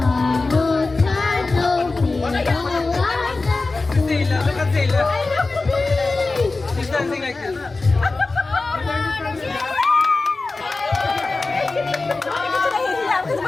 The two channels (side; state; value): right; quieter; 3.6 dB